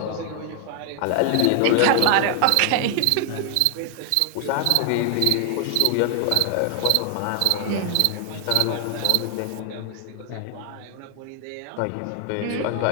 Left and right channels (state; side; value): different; both; correlation 0.00